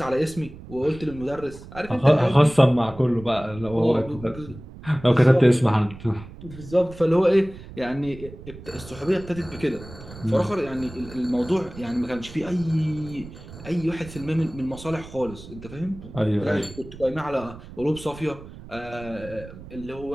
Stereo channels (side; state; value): right; noise; rumble, 16 dB below the sound